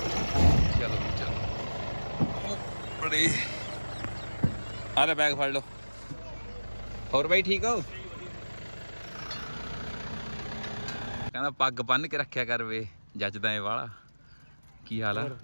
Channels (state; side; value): inverted; both; correlation -1.00